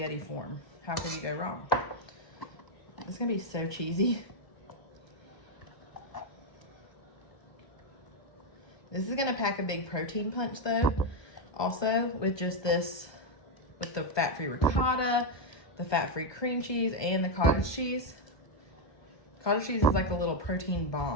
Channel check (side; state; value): right; late; 1.2 ms